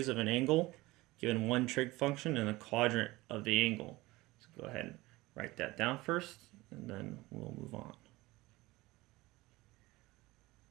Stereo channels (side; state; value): left; quieter; 20.1 dB